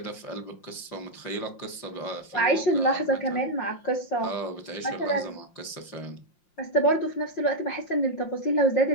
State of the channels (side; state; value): right; late; 5.7 ms